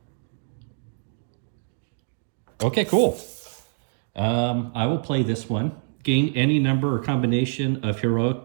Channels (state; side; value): silent; left; digital silence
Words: Okay, cool. I will play this one. Gain any number or combination of heroic